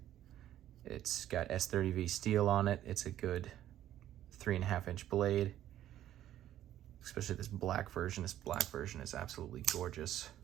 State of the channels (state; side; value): quieter; left; 12.3 dB